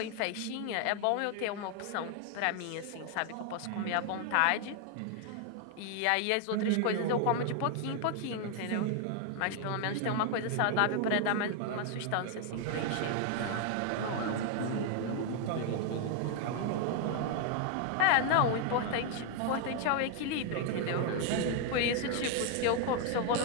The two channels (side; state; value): both; different; correlation 0.00